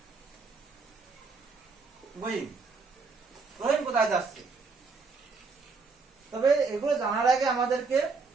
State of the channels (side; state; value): left; quieter; 4.4 dB